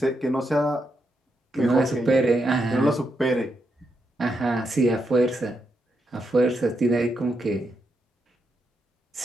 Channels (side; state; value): both; normal; correlation 0.82